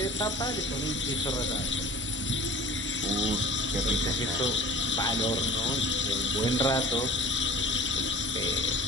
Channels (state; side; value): normal; both; correlation 0.42